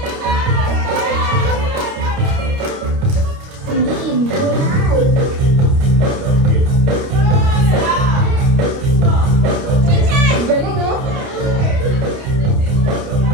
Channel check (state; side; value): late; left; 29 ms